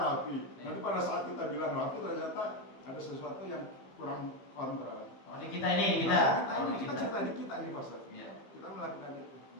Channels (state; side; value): late; right; 15 ms